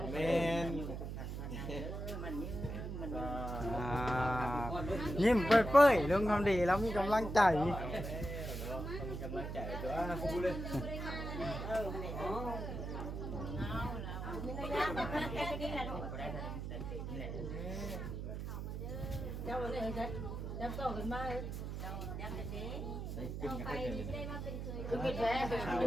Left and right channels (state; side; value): noise; right; hum, 5 dB below the sound